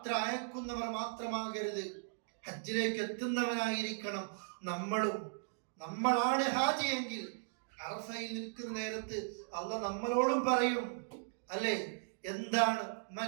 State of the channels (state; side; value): silent; left; digital silence